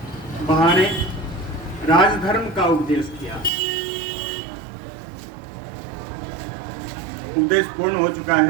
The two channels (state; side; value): drops out; left; at 3.5 s